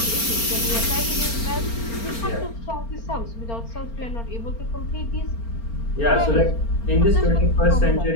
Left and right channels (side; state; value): right; late; 4.4 ms